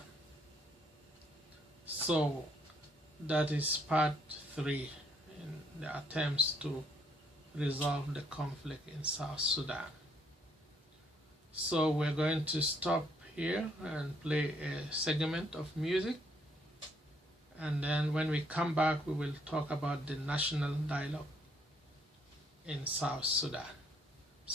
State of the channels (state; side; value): normal; both; correlation 0.68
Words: So that is part 3 in the attempts to resolve the conflict in South Sudan. So we're going to stop here and play a segment of music, and then when we come back we will talk about the national dialogue in South Sudan.